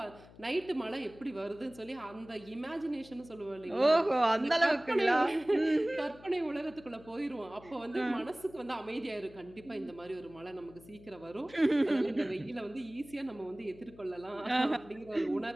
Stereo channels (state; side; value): noise; left; hum, 21 dB below the sound